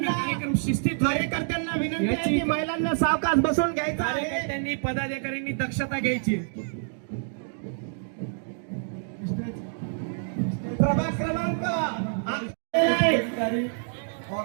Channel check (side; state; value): left; silent; digital silence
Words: कार्यक्रम शिस्तीत कार्यकर्त्यांना विनंती आहे की महिलांना सावकाश बसून घ्यायचं आहे. कार्यकर्त्यांनी पदाधिकाऱ्यांनी दक्षता घ्यायची. प्रभाग क्रमांक